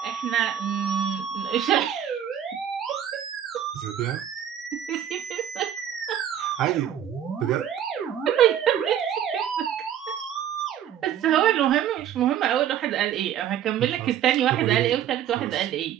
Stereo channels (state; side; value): quieter; left; 10.0 dB